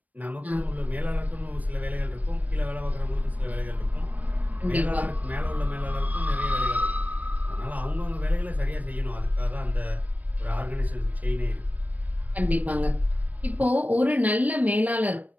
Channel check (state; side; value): late; left; 0.075 ms